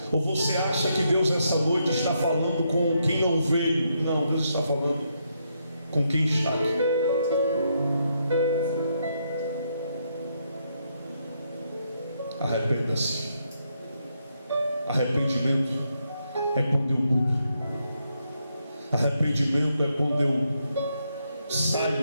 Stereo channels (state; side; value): inverted; both; correlation -0.79